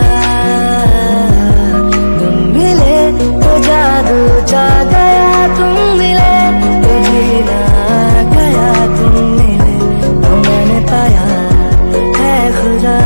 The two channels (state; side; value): inverted; both; correlation -1.00